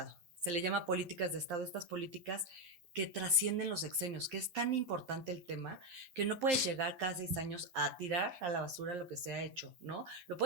Se le llama políticas de Estado, estas políticas que trascienden los sexenios, que es tan importante el tema que no puedes llegar cada 6 años a tirar a la basura lo que se ha hecho, ¿no? Lo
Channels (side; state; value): left; late; 11 ms